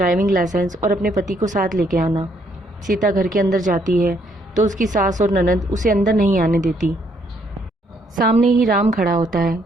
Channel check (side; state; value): both; normal; correlation 0.70